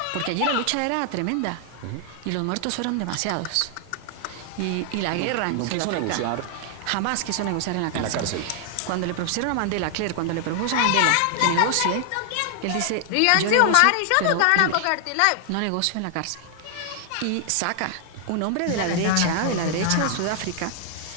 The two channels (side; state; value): both; different; correlation 0.00